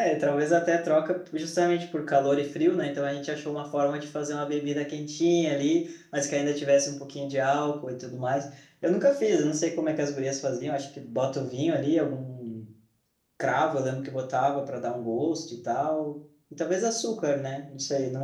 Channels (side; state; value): both; identical; correlation 1.00